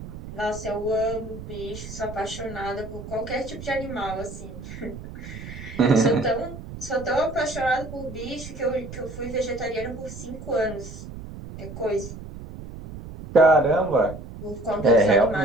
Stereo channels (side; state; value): right; noise; rumble, 12 dB below the sound